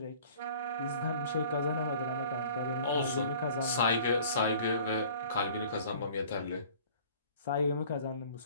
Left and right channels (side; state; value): both; inverted; correlation -0.48